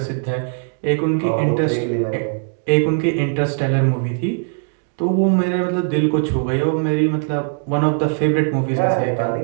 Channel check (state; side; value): silent; left; 60 dB below the other